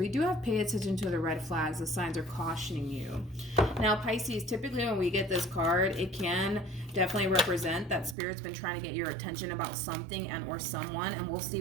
do have pay attention to the red flags. The signs are cautioning you. Now Pisces, typically when we get this card, it can definitely represent that Spirit's been trying to get your attention about something and or someone, and we'll see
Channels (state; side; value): drops out; left; at 8.2 s